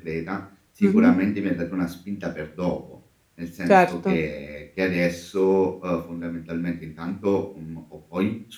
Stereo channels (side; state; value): both; identical; correlation 1.00